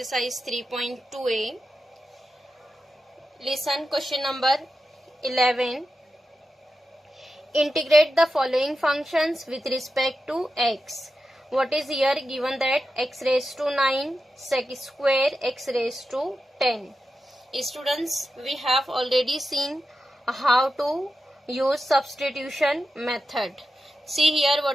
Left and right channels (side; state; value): both; normal; correlation 0.90